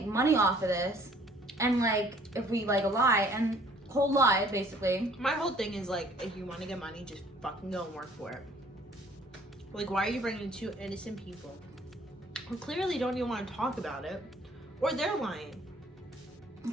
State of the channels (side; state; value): both; normal; correlation 0.57